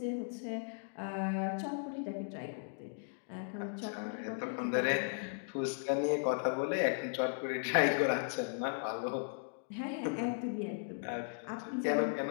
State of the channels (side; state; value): right; silent; digital silence